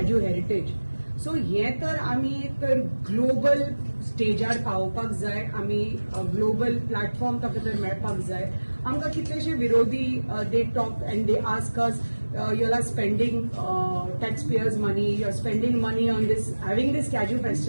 heritage. So हे तर आमी तर ग्लोबल स्टेजार पावोवपाक जाय. आमी ग्लोबल प्लॅटफॉर्म ताका तर मेळपाक जाय. आमकां कितलेशे विरोधी they talk and they ask us you are spending taxpayers' money, you're spending money on this, having this Kaju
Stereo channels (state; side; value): inverted; both; correlation -1.00